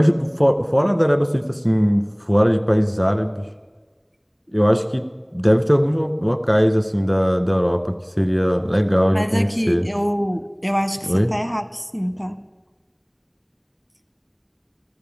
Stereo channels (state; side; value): identical; both; correlation 1.00